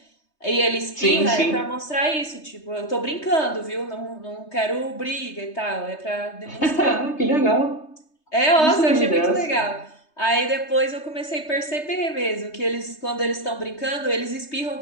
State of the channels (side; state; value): right; late; 3.2 ms